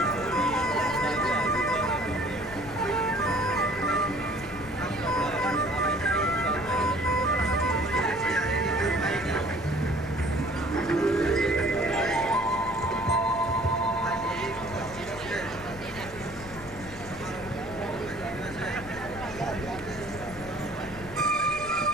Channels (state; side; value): noise; left; rumble, 15 dB below the sound